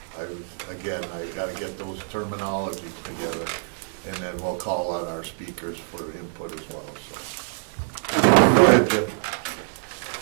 I got to get those terminologies together, and then we'll call on our speakers for input as well. So, go ahead, Jim.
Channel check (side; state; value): left; silent; digital silence